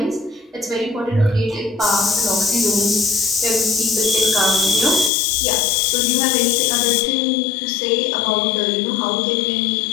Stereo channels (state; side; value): drops out; right; at 5.1 s